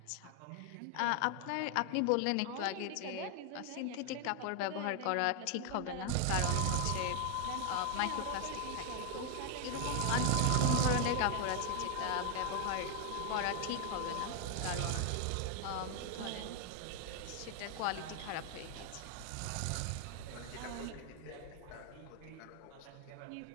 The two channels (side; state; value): both; different; correlation 0.00